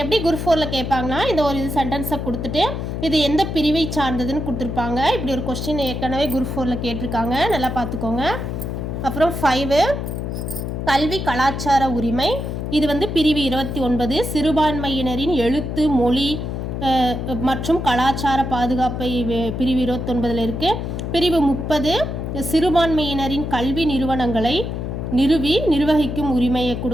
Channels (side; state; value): left; noise; hum, 4 dB below the sound